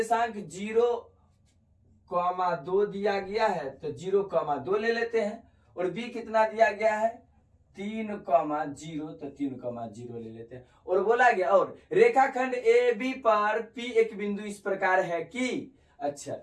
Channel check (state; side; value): identical; both; correlation 1.00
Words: 0,2 दिया गया है, तो 0,2 ले लेते हैं। और B कितना दिया गया है, 3,0, तो 3,0 ले लेते हैं। और बोला गया, और रेखाखंड AB पर P एक बिंदु इस प्रकार है कि, अच्छा,